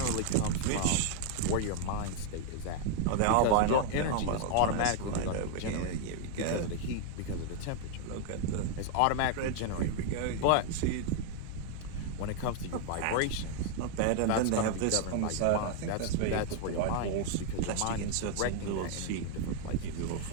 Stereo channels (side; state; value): both; different; correlation 0.00